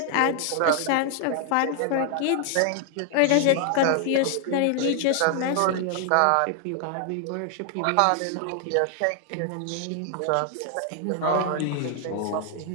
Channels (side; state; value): both; different; correlation 0.00